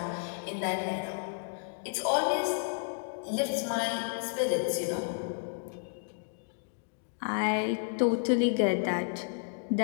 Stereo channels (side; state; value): right; silent; digital silence